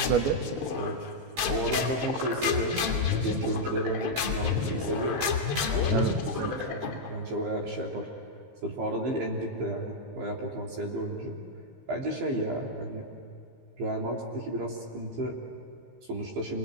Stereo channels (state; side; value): late; left; 15 ms